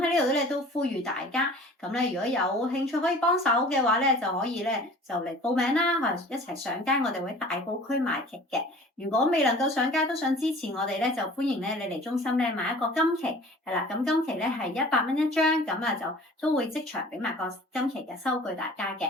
呢度咧都呼籲大家，咁咧如果有興趣可以幫手嘅話咧，就可以咧就嚟報名啦，或者一齊上街，我哋會大埔區賣旗嘅。如果未能夠上街都想支持我哋咧，就歡迎咧你嚟中心咧買一個金旗，係啦。咁金旗咧係100蚊一張，咁啊就都會即場俾埋個金旗嘅收據大家嘅。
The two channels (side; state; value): both; normal; correlation 0.46